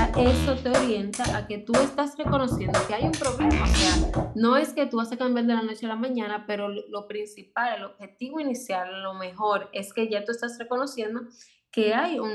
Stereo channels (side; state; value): both; identical; correlation 1.00